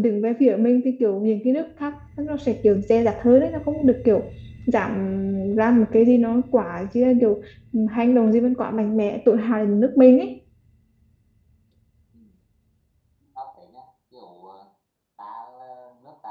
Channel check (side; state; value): both; identical; correlation 1.00